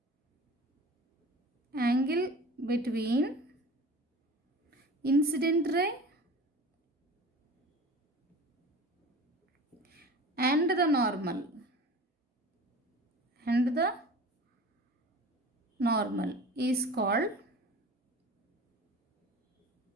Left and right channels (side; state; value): both; normal; correlation 0.38